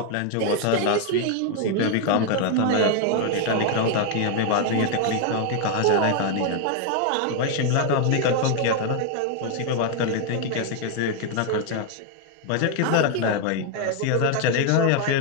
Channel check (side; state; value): both; different; correlation 0.00